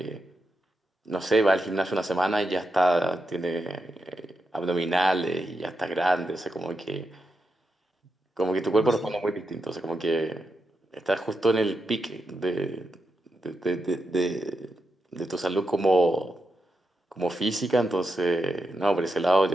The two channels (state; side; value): normal; both; correlation 0.85